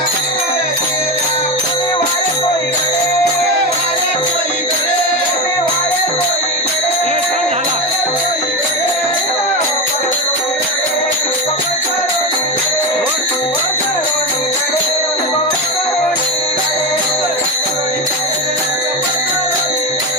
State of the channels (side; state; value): both; normal; correlation 0.17